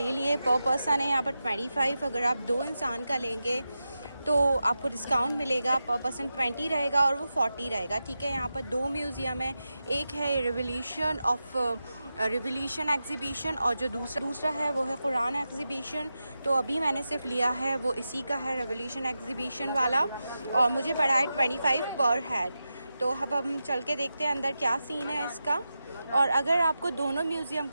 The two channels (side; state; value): both; inverted; correlation -0.91